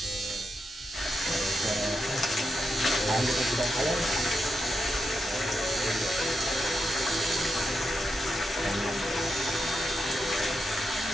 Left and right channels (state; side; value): normal; both; correlation 0.86